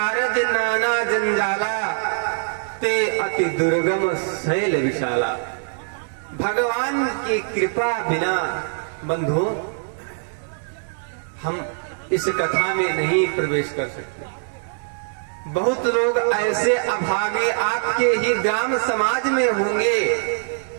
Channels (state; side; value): silent; left; digital silence